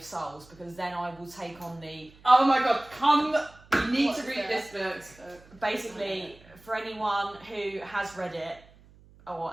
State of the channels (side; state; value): right; noise; hum, 25 dB below the sound